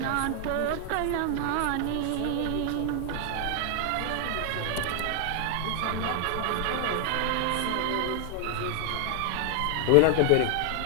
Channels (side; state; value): both; different; correlation 0.00